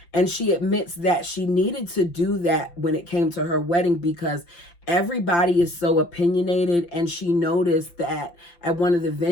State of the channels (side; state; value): right; late; 5.8 ms